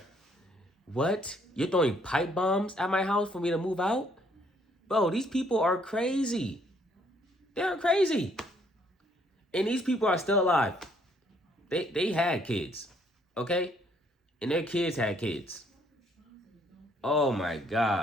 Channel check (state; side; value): normal; both; correlation 0.66